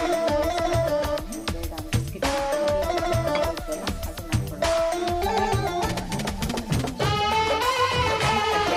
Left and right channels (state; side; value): identical; both; correlation 1.00